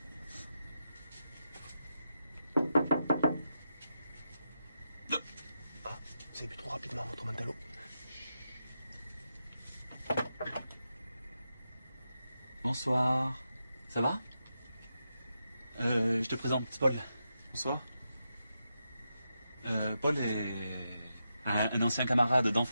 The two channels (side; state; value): both; inverted; correlation -0.87